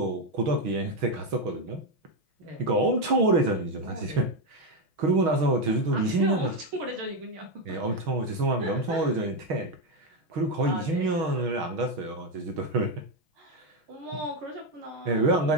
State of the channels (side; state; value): left; late; 6.3 ms